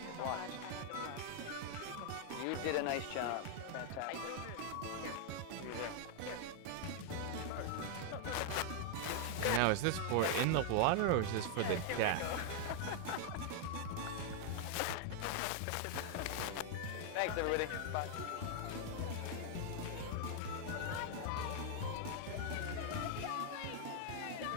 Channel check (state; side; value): different; both; correlation 0.00